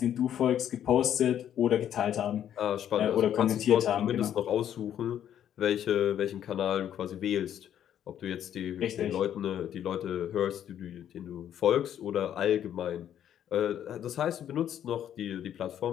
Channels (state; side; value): quieter; right; 10.2 dB